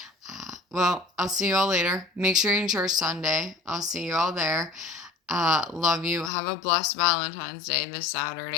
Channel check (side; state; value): right; drops out; at 6.3 s